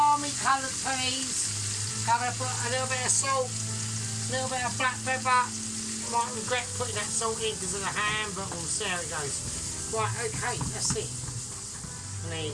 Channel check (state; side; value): identical; both; correlation 1.00